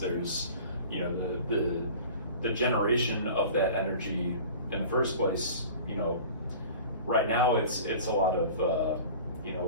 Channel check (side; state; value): both; inverted; correlation -0.41